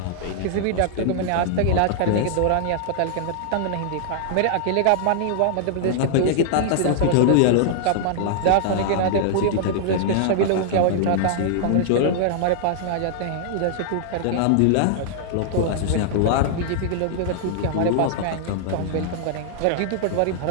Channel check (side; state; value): both; different; correlation -0.01